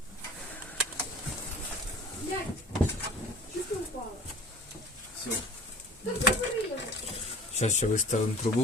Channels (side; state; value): both; normal; correlation 0.44